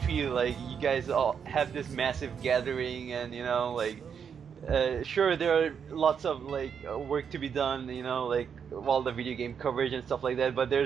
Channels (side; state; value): left; quieter; 7.2 dB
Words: like, you guys all have this massive gathering, and you know, like, sure, there are lots of like work to be done, you know, like all the video game coverage and stuff like that, but